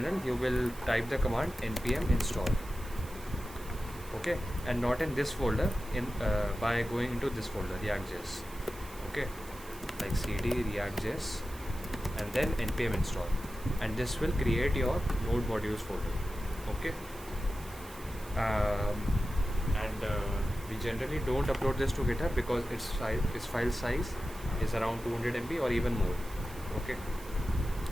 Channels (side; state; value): right; noise; hiss, 19 dB below the sound